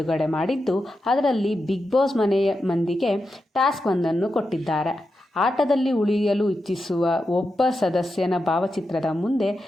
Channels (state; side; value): normal; both; correlation 0.88